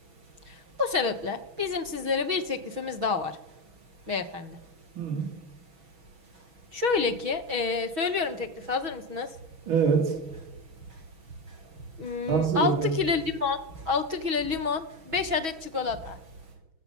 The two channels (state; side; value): late; left; 6.2 ms